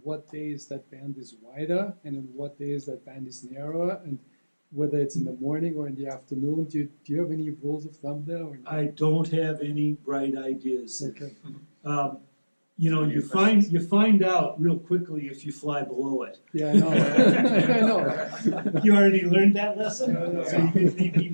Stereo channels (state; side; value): inverted; both; correlation -1.00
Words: what days that band is wider and on what days that band is narrower, and whether it's in the morning or in the afternoon? Do you have any rules of thumb there? Or I don't have any bright ideas. Okay. You find out real quickly if you fly below it. Yeah, I know. I know. You already learned that lesson, Yeah. so you didn't need me